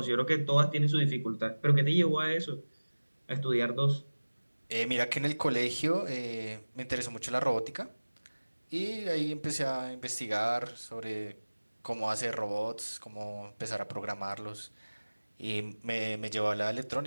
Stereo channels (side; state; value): both; inverted; correlation -1.00